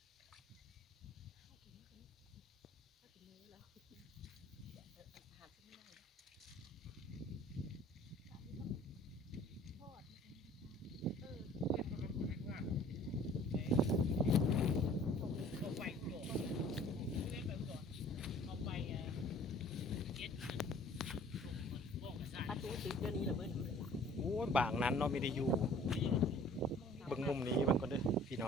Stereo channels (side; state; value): both; normal; correlation 0.51